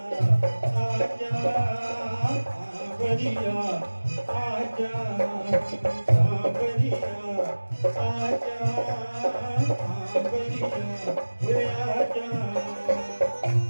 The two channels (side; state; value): both; inverted; correlation -1.00